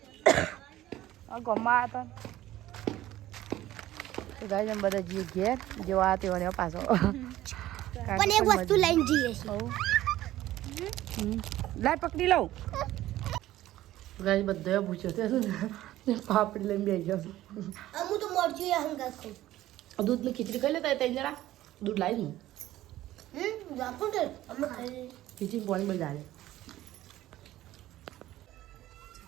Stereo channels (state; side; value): quieter; left; 14.7 dB